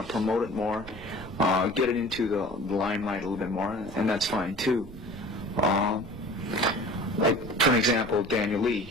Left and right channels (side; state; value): right; noise; rumble, 17 dB below the sound